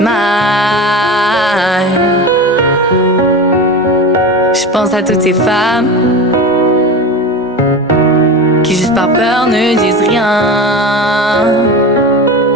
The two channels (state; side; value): normal; both; correlation 0.27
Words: Je pense à toutes ces femmes qui juste par peur ne disent rien.